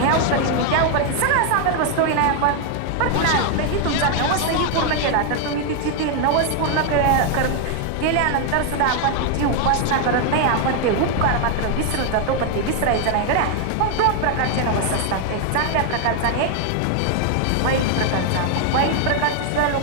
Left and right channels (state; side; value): different; both; correlation 0.00